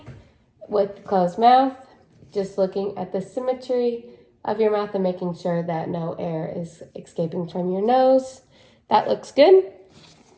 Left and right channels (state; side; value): identical; both; correlation 1.00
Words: with closed mouth, just looking at the symmetry of your mouth and making sure that no air is escaping from your nose. That looks good.